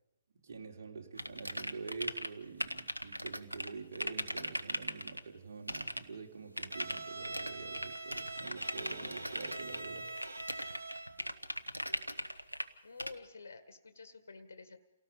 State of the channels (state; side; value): inverted; both; correlation -0.93